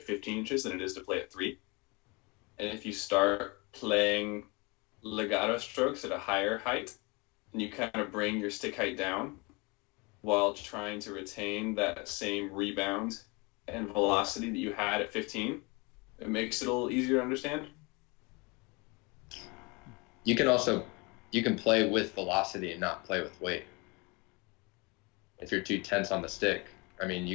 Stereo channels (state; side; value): quieter; right; 27.9 dB